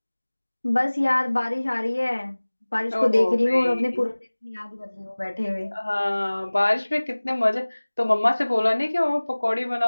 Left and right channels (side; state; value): both; inverted; correlation -1.00